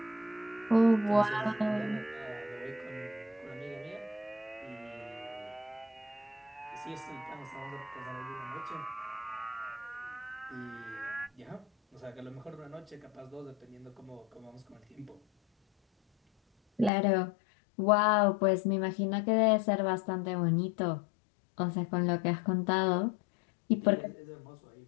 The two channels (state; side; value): drops out; right; at 16.9 s